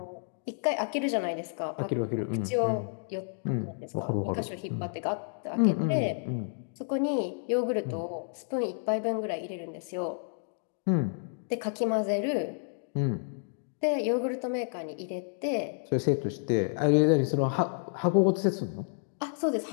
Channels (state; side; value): silent; right; digital silence